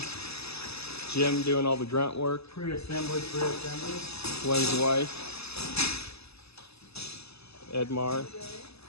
Jim doing all the grunt work. Pre-assembly. Glenn's wife. Edmar.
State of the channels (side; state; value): right; late; 0.79 ms